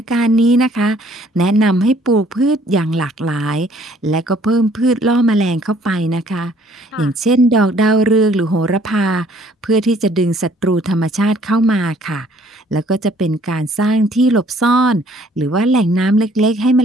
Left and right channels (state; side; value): normal; both; correlation 0.60